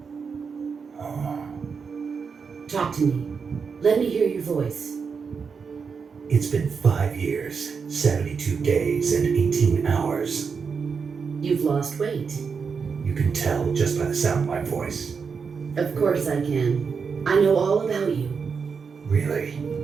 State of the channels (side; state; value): left; quieter; 5.7 dB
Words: Talk to me. Let me hear your voice. It's been 5 years, 72 days, and 18 hours. You've lost weight. You can tell just by the sound of my voice. Of course I can. I know all about you. Really?